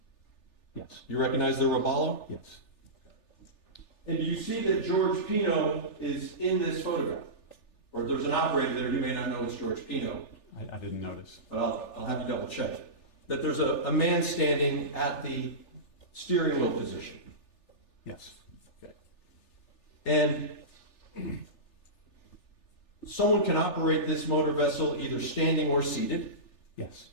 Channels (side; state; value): right; late; 3.4 ms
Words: Yes. You recognize the Robalo? Yes. And do you see that George Pino is in this photograph? Or there's an operator there, you may not know it's George Pino, I didn't notice. but I'll have you double check. That there's a man standing at the steering wheel position. Yes. Okay. And someone can operate this motor vessel either standing or seated. Yes.